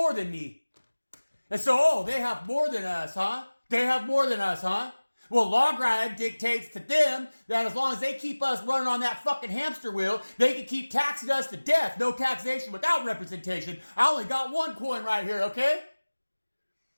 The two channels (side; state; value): both; inverted; correlation -1.00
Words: than me. And so, they have more than us, huh? They have more than us, huh? Well, log ride dictates to them that as long as they keep us running on that fucking hamster wheel, they can keep taxing us to death. No taxation without representation. I only got one coin right here, okay?